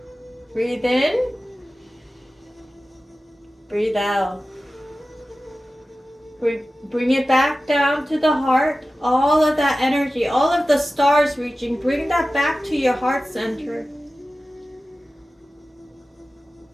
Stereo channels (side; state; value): both; normal; correlation 0.95